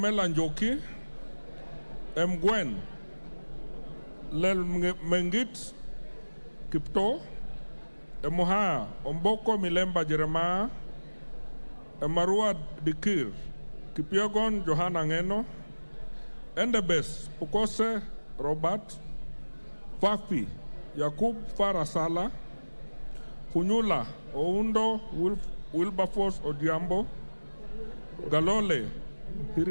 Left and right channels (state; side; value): inverted; both; correlation -1.00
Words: Njoki, Mgwen, Lel Mengit Kipto, Emuha, Omboko Milemba Jeremiah, Emarua Dikir, Kipiogon Johanna Ngeno, Endebes Pukose Robert, Fafi Yakub Farasala, Funyula Oundo Wilberforce Odiambo, Galole,